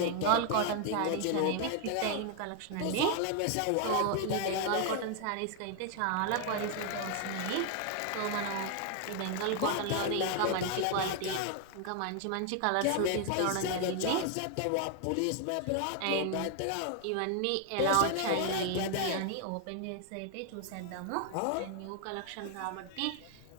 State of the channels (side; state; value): both; different; correlation 0.00